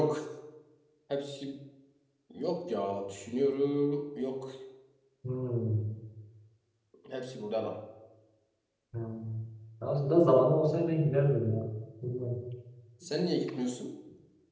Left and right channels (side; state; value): both; identical; correlation 1.00